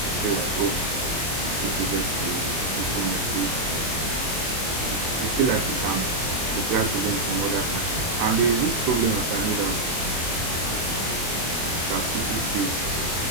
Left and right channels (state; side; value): late; left; 25 ms